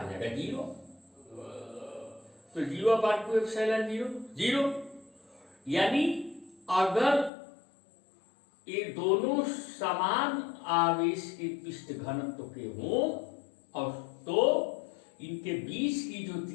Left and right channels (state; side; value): drops out; right; at 7.3 s